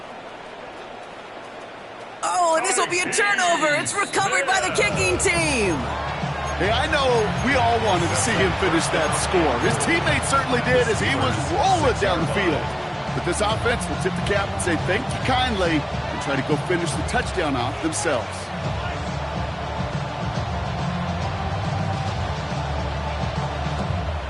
Oh, and this will be a turnover. It's recovered by the kicking team. Hey, I know we all wanted to see him finish that score. His teammates certainly did as he was rolling down the field. But this offense will tip the cap and say thank you kindly and try to go finish the touchdown off themselves.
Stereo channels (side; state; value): both; identical; correlation 1.00